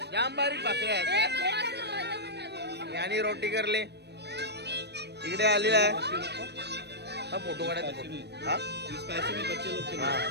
जाम बारीक भाकरी आहेत. आणि रोटी करले. इकडे आलेला आहे. हा फोटो काढायचा. हा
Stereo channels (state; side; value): late; left; 0.49 ms